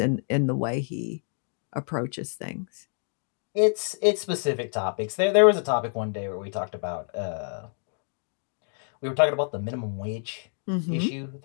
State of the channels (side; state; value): right; silent; digital silence